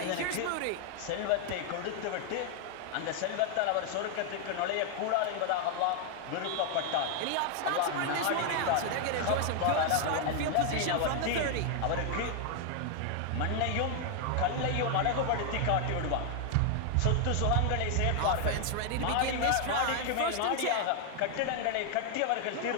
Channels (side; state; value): both; different; correlation 0.00